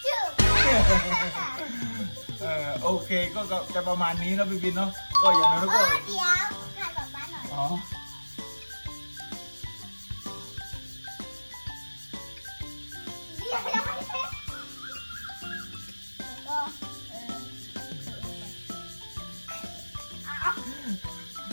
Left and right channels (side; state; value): both; inverted; correlation -1.00